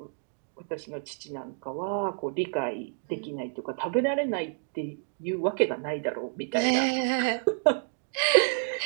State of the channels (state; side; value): silent; left; digital silence